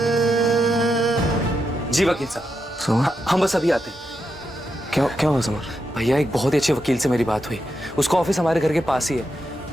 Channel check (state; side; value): normal; both; correlation 0.85